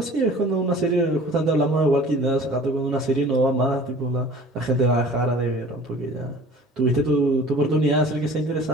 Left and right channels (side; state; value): both; normal; correlation 0.46